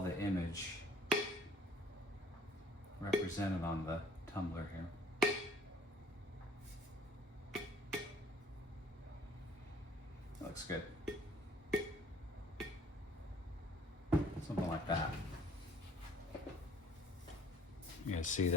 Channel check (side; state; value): both; normal; correlation 0.55